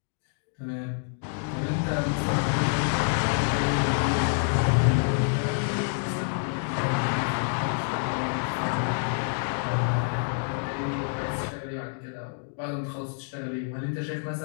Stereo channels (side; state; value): right; silent; digital silence